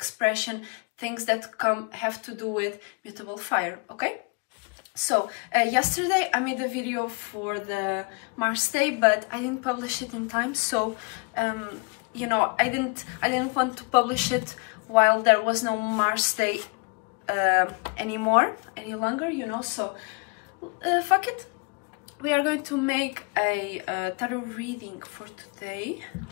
things that have to do with mutable fire. Okay, so yesterday I made a video for the Mars Day, but I didn't publish it in time. So you know, I didn't want to publish it while there was no Mars Day any longer, you know, so fuck it. We are going to make a tarot reading for today.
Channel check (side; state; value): right; quieter; 32.0 dB